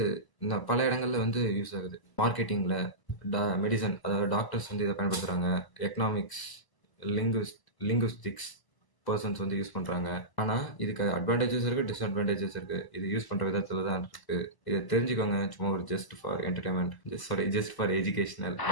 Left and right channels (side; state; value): right; late; 1.0 ms